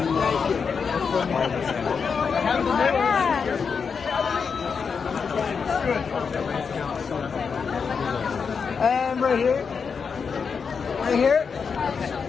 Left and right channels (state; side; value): quieter; right; 5.8 dB